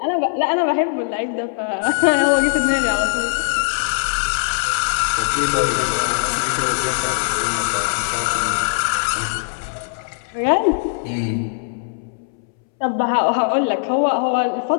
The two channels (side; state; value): right; silent; 64 dB below the other